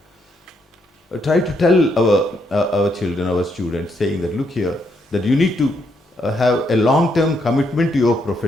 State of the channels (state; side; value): normal; both; correlation 0.76